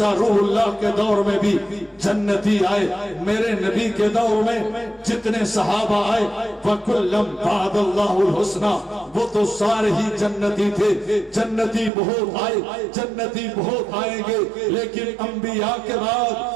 روح اللہ کے دور میں بھی جنتی آئے، میرے نبی کے دور میں جتنے صحابہ آئے وَكُلًّا بَعْدَ اللَّهُ الْحُسْنَى، وہ تو سارے ہی جنتی تھے۔ جنتی بہت آئے، جنتی بہت آئیں گے، لیکن انبیاء کے بعد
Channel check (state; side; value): drops out; left; at 11.9 s